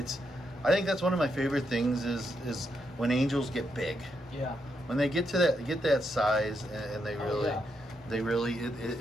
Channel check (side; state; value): both; normal; correlation 0.81